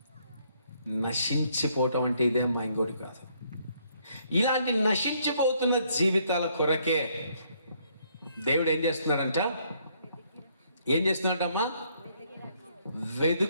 నశించిపోవటం అంటే ఇదే అమ్మా, ఇంకోటి కాదు. ఇలాంటి నశించిపోతున్న జీవితాల కొరకే దేవుడు ఏం చేస్తున్నాడంట? ఏం చేస్తున్నాడమ్మా?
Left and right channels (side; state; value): both; inverted; correlation -0.69